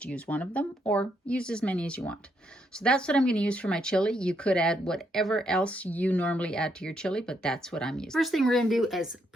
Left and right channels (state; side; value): normal; both; correlation 0.76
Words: use one of them, or use as many as you want. So that's what I'm going to use for my chili. You could add whatever else you normally add to your chili, but that's what I'm using. First thing we're going to do is